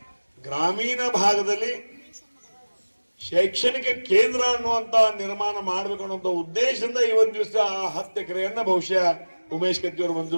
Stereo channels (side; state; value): both; inverted; correlation -1.00